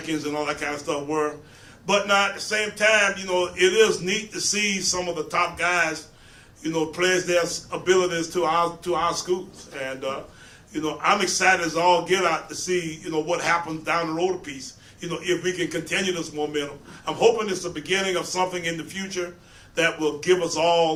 and all that kind of stuff were. But now at the same time, it is neat to see some of the top guys, pledge their abilities to our schools. And I'm excited as all get out to see, what happens down the road a piece. If we can continue this momentum. I'm hoping it's the beginning of something in the future that will give us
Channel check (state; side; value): identical; both; correlation 1.00